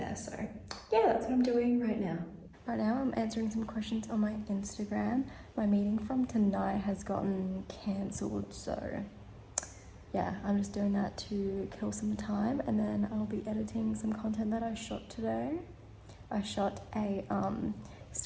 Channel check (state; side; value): identical; both; correlation 1.00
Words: So yeah, that's what I'm doing right now. Right now I'm answering some questions on my Instagram. My meeting from tonight has gotten cancelled, so yeah, I'm just doing that to kill some time and then I'll be editing some content that I shot today. I shot a